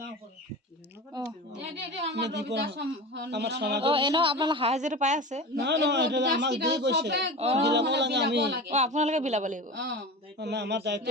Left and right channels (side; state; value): both; normal; correlation 0.30